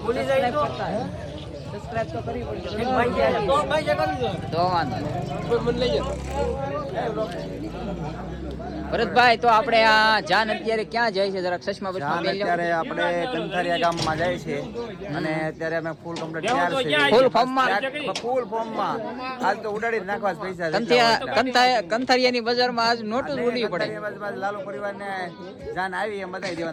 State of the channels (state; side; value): identical; both; correlation 1.00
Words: સબસ્ક્રાઇબ તો કરવી પડશે તો વાંધો નહીં। ભરતભાઈ, તો આપણે આ જાન અત્યારે ક્યાં જાય છે? જરાક ચશ્મા બચમાં પહેરી લો। અત્યારે આપણે કંથારિયા ગામમાં જાય છે અને અત્યારે અમે ફૂલ કમ્પ્લીટ તૈયાર છે, ફૂલ ફોર્મમાં આજ તો ઉડાડી જ નાખવા જ પૈસા કંથારિયાની બજારમાં આજ નોટું જ ઉડવી પડે। લાલુ પરિવારને જાન આવી એમ બતાવી